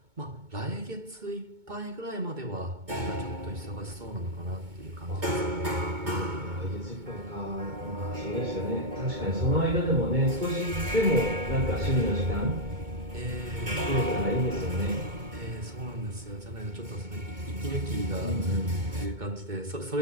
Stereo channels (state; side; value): late; left; 2.2 ms